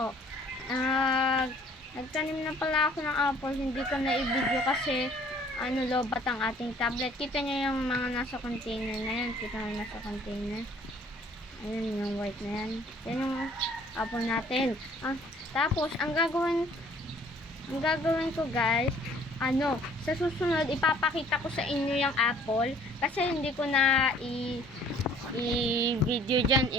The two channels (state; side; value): normal; both; correlation 0.56